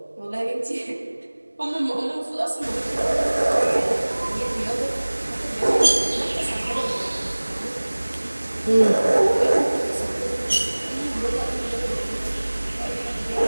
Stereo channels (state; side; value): inverted; both; correlation -1.00